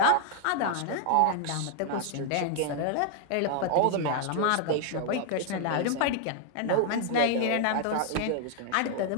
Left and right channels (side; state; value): both; different; correlation 0.00